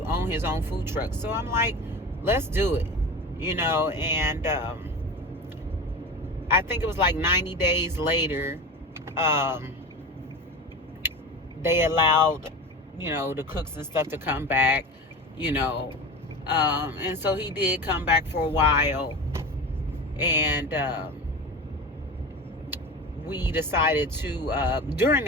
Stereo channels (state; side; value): normal; both; correlation 0.29